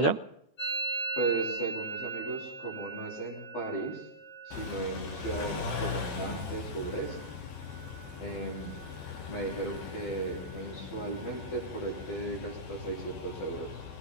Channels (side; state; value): right; late; 12 ms